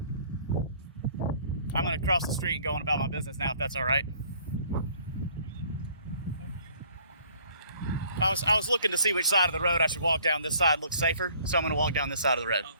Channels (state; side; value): inverted; both; correlation -0.57